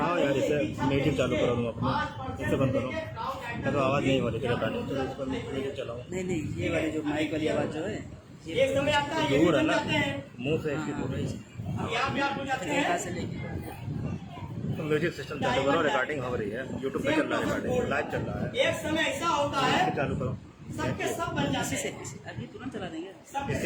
यार, इसे नेटिव चालू करो तुम अपना, इसे बंद करो, तो आवाज नहीं हो रही है। नेटिव चलाओ। नहीं ये वाली जो माइक वाली आवाज जो है एक समय आता है, दूर है ना, मुंह से इसकी दूर है। यहाँ पे आप हो जाते हैं, तो म्यूजिक सिस्टम चालू करो, रिकॉर्डिंग हो रही है, यूट्यूब पे चल रहा है, रिकॉर्डिंग लाइव चल रहा है। एक समय ऐसा होता है, चालू करो, सबके सब बन जाते हैं, अभी तुरंत चला देंगे।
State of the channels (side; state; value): both; identical; correlation 1.00